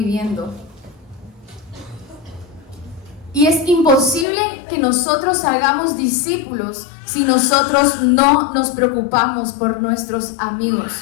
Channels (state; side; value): drops out; right; at 4.2 s